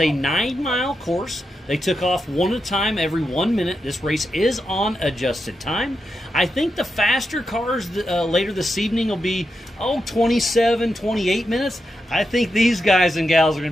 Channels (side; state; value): both; normal; correlation 0.87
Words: 9-mile course. They took off one at a time every 1 minute. This race is on adjusted time. I think the faster cars later this evening will be 27, 28 minutes. I think these guys and gals are going